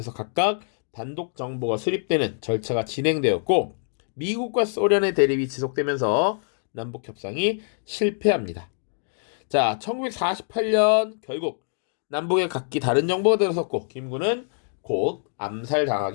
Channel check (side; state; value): right; silent; digital silence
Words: 각각 단독 정부가 수립되는 절차가 진행되었고, 미국과 소련의 대립이 지속되면서 남북 협상이 실패합니다. 자, 1948년 결국 남북에 각기 다른 정부가 들어섰고 김구는 곧